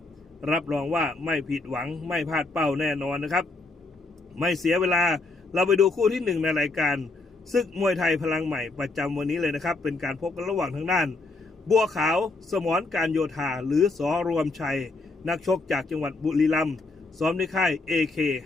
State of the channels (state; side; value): quieter; right; 3.3 dB